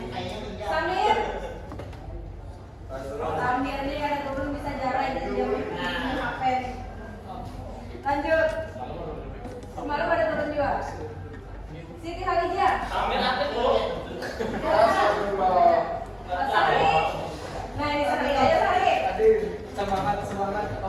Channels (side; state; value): both; identical; correlation 1.00